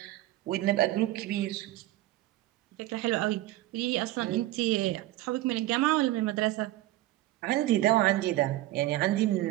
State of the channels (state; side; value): quieter; left; 16.3 dB